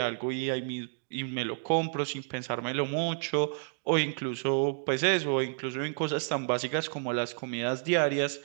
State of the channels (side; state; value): left; silent; digital silence